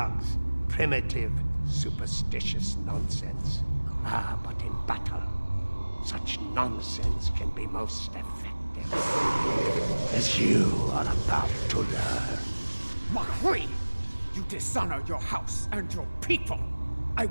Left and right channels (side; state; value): both; inverted; correlation -1.00